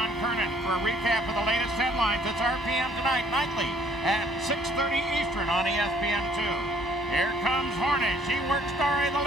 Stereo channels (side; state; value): both; normal; correlation 0.60